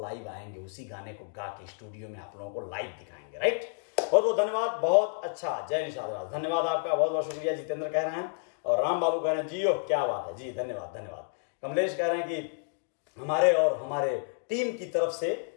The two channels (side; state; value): right; silent; digital silence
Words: लाइव आएंगे, उसी गाने को गा के स्टूडियो में आप लोगों को लाइव दिखाएंगे, राइट? बहुत बहुत धन्यवाद, बहुत अच्छा, जय निषाद राज, धन्यवाद आपका, बहुत बहुत शुक्रिया। जितेंद्र कह रहे हैं और राम बाबू कह रहे हैं जियो, क्या बात है जी, धन्यवाद धन्यवाद। कमलेश कह रहे हैं कि हमारे और हमारे टीम की तरफ से